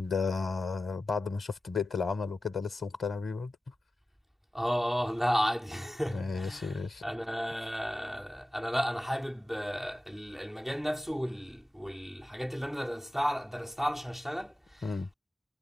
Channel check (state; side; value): normal; both; correlation 0.94